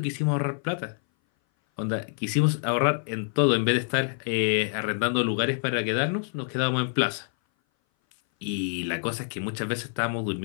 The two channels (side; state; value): right; silent; 58 dB below the other